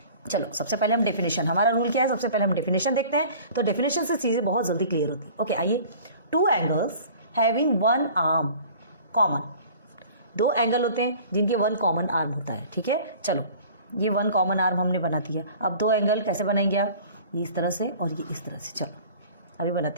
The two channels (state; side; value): inverted; both; correlation -0.45